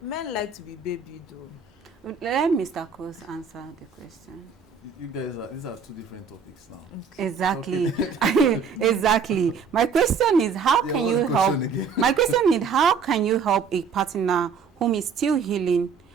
Men like to be babied, though. Let Mr. Cross answer the question. You guys these are two different topics now. Exactly. Exactly. My question is, how can you help? My question is, how can you help a partner whom is still healing?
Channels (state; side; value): quieter; left; 5.7 dB